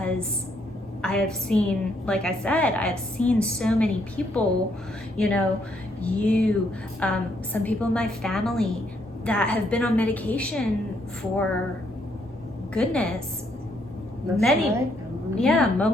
I have seen, like I said, I have seen so many people, you know, some people in my family that have been on medication for goodness,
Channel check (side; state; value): both; normal; correlation 0.72